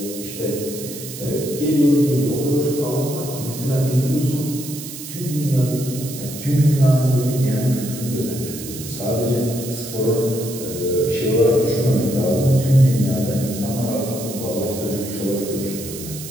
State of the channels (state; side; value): noise; right; hiss, 11 dB below the sound